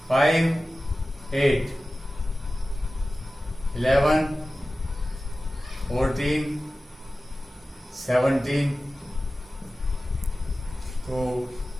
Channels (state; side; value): normal; both; correlation 0.95